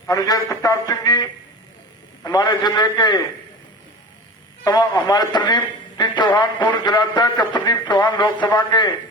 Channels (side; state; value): both; normal; correlation 0.33